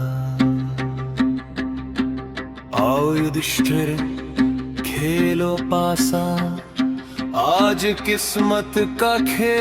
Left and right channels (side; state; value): both; identical; correlation 1.00